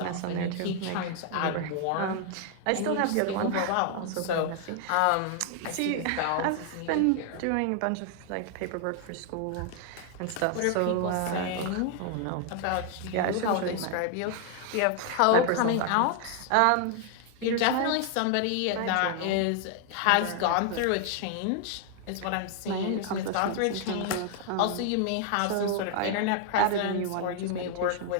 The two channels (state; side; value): different; both; correlation 0.00